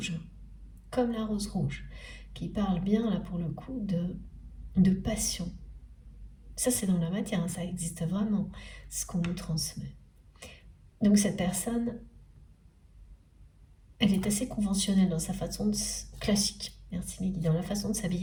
comme la rose rouge, qui parle bien là pour le coup de passion. Ça c'est dans la matière, hein, ça existe vraiment, ce qu'on nous transmet. Donc cette personne, elle est assez conventionnelle dans sa façon classique, merci Mehdi, dans la façon de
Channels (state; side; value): identical; both; correlation 1.00